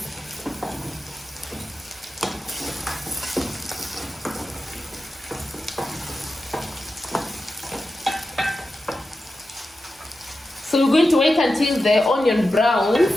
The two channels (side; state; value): both; normal; correlation 0.91